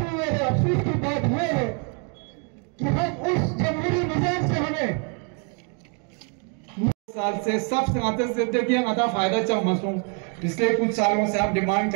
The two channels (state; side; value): quieter; left; 38.2 dB